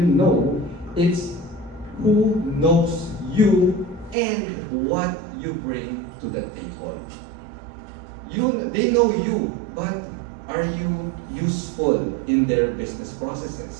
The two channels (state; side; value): drops out; left; at 4.2 s